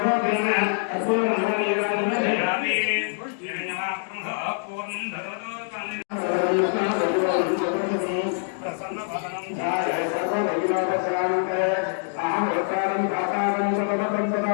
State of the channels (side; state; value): right; silent; digital silence